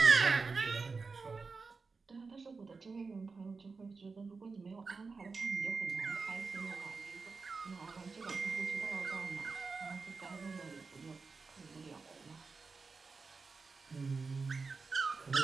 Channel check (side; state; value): left; quieter; 4.5 dB